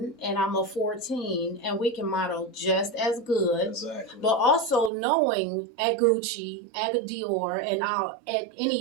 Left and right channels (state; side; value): drops out; left; at 4.9 s